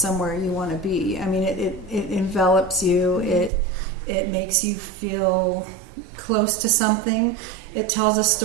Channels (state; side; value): drops out; left; at 3.5 s